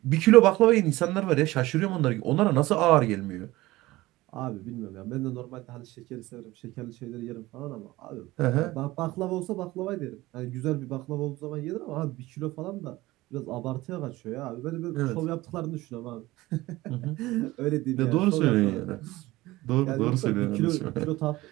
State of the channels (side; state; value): left; quieter; 18.7 dB